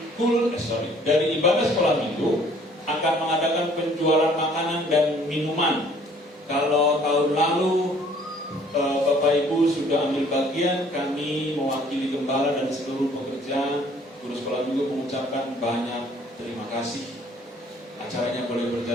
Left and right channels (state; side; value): normal; both; correlation 0.57